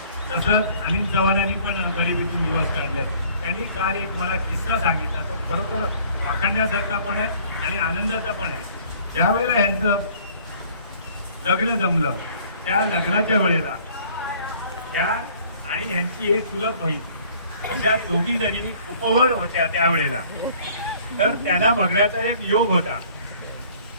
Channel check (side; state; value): both; inverted; correlation -0.55